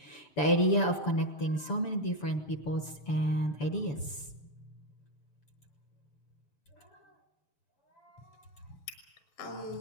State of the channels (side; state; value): right; late; 7.0 ms